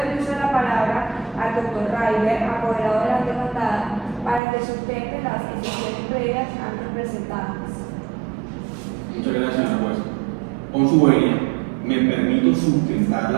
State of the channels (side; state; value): left; drops out; at 4.4 s